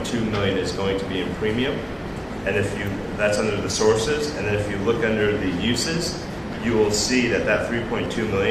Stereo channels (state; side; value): identical; both; correlation 1.00